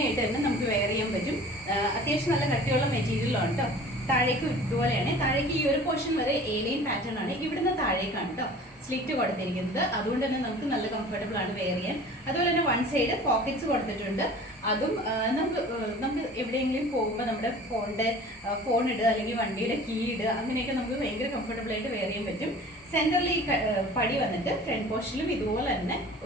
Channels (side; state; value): both; normal; correlation 0.44